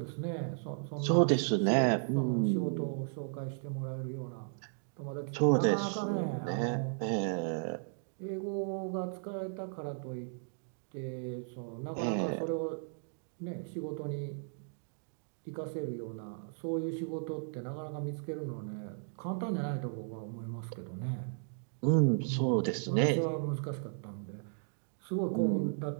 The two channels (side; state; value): left; silent; digital silence